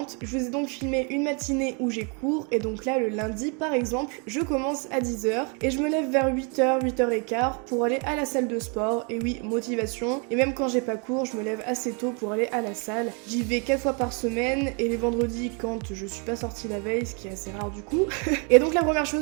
Je vous ai donc filmé une matinée où j'ai cours et donc là le lundi par exemple, je commence à 10h et je me lève vers 8h, 8h15 pour aller à la salle de sport. Et oui, motivation, et même quand j'ai pas cours, je me lève assez tôt pour aller à la salle. J'y vais 4 fois par semaine et les vendredis quand je suis pas sortie la veille, ce qui est assez rare du coup. Et donc la première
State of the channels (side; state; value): left; quieter; 35.6 dB